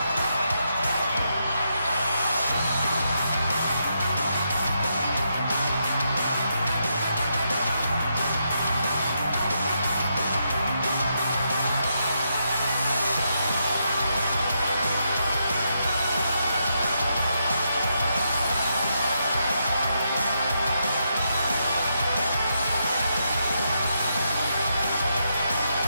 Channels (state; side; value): inverted; both; correlation -0.81